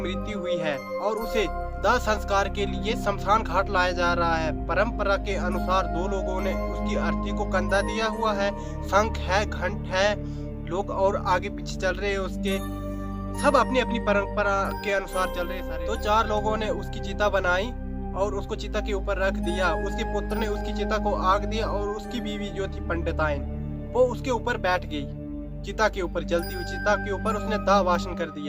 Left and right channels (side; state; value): both; identical; correlation 1.00